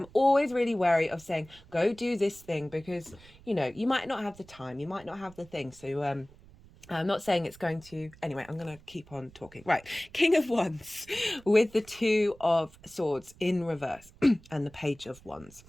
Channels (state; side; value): noise; right; rumble, 23 dB below the sound